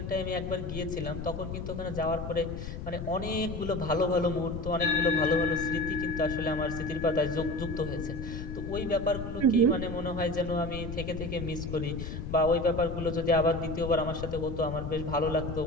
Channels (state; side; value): noise; left; rumble, 7 dB below the sound